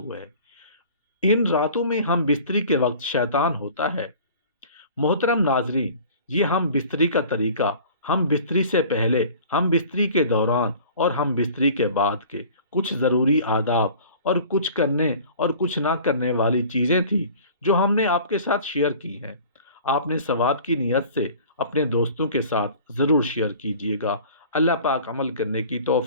ہے۔ ان راتوں میں ہم بستری کے وقت شیطان ہوتا ہے۔ محترم ناظرین، یہ ہم بستری کا طریقہ ہم بستری سے پہلے، ہم بستری کے دوران اور ہم بستری کے بعد کے کچھ ضروری آداب اور کچھ کرنے اور کچھ نہ کرنے والی چیزیں تھیں جو ہم نے آپ کے ساتھ شیئر کی ہیں۔ آپ نے ثواب کی نیت سے اپنے دوستوں کے ساتھ ضرور شیئر کیجیے گا۔ اللہ پاک عمل کرنے کی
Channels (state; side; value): inverted; both; correlation -0.45